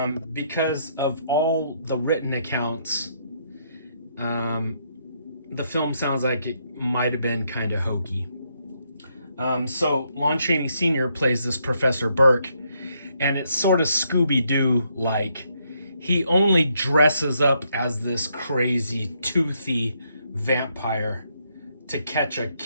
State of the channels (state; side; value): inverted; both; correlation -0.74